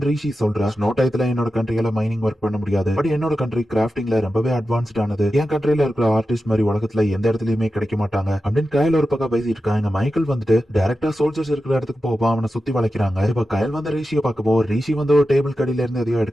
ரிஷி சொல்றா. ஸ்னோ டயத்துல என்னோட கண்ட்ரியில மைனிங் ஒர்க் பண்ண முடியாது, பட் என்னோட கண்ட்ரி கிராஃப்டிங்ல ரொம்பவே அட்வான்ஸ்ட் ஆனது. என் கண்ட்ரியில இருக்கிற ஆர்டிஸ்ட் மாதிரி உலகத்துல எந்த இடத்துலயுமே கிடைக்க மாட்டாங்க அப்படின்னு கயல் ஒரு பக்கம் பேசிட்டு இருக்காங்க. மைக்கேல் வந்துட்டு டைரக்டா சோல்ஜர்ஸ் இருக்கிற இடத்துக்கு போவா, அவனை சுத்தி வளைக்கிறாங்க. இப்ப கயல் வந்து ரிஷியை பார்க்கவோ, ரிஷி வந்து ஒரு டேபிள் கடியில இருந்து எதையோ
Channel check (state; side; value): normal; both; correlation 0.91